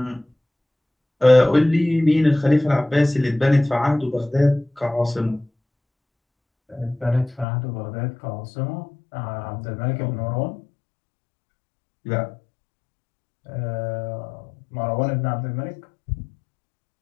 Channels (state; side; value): drops out; right; at 7.5 s